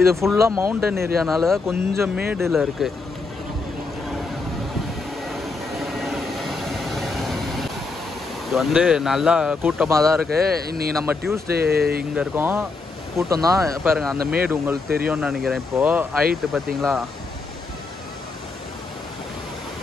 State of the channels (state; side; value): quieter; right; 3.9 dB